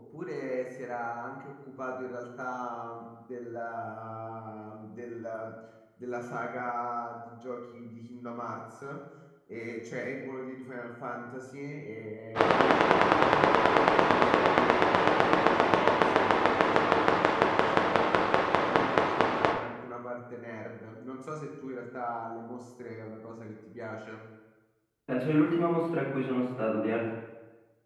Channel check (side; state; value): both; identical; correlation 1.00